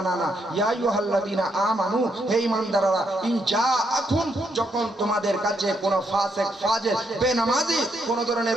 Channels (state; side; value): normal; both; correlation 0.76